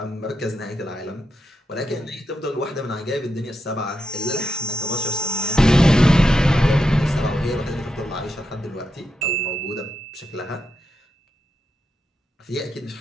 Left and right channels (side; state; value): both; normal; correlation 0.86